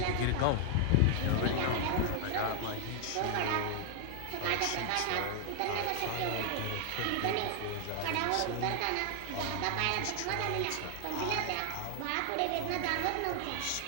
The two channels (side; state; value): both; different; correlation 0.00